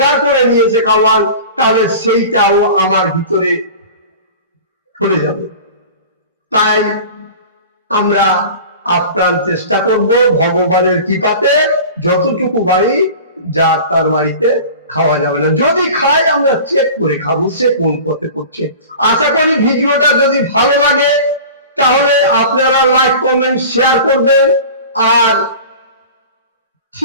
করে নিয়েছে খাওয়ান, তাহলে সেইটাও আমার ভিতরে চলে যাবে। তাই আমরা আপ্রাণ চেষ্টা করব ভগবানের কৃপাতে যতটুকু বাড়ি, যার তার বাড়িতে খাওয়া যাবে না। যদি খাই, আমরা চেক করে খাবো সে কোন পথে করছে। আশা করি ভিডিওটা যদি ভালো লাগে তাহলে আপনারা লাইক, কমেন্ট, শেয়ার করবেন, আর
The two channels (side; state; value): both; inverted; correlation -0.38